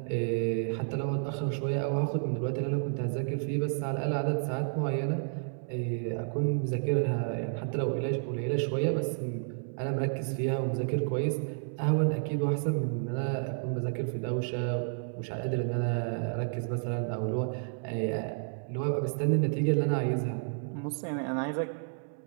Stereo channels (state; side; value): silent; left; 57 dB below the other